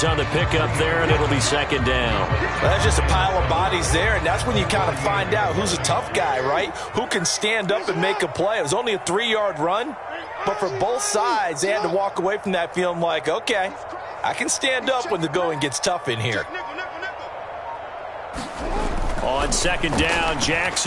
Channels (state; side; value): identical; both; correlation 1.00